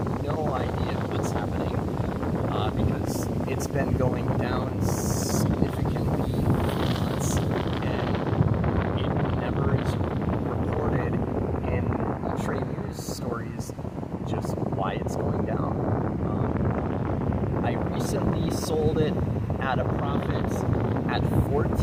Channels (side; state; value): both; identical; correlation 1.00